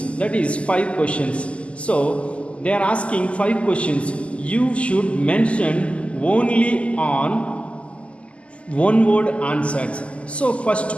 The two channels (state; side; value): late; right; 0.058 ms